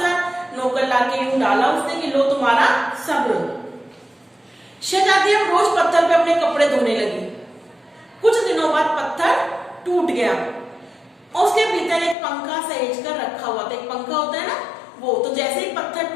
नौकर लाके यूं डाला उसने कि लो तुम्हारा सब्र। शहजादी अब रोज पत्थर पे अपने कपड़े धोने लगी। कुछ दिनों बाद पत्थर टूट गया और उसके भीतर एक पंखा सहेज कर रखा हुआ था। एक पंखा होता है ना वो, तो जैसे ही पत्थर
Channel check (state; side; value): drops out; right; at 12.2 s